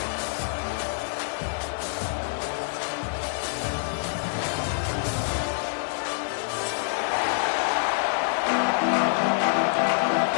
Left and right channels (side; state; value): right; silent; 61 dB below the other